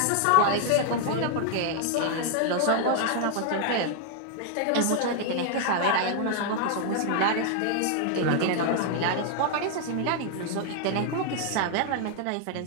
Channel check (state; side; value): different; both; correlation 0.00